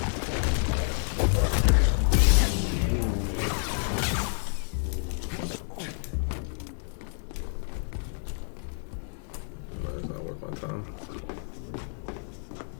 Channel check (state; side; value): silent; right; digital silence